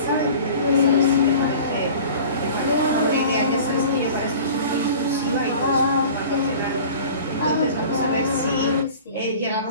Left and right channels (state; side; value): inverted; both; correlation -0.43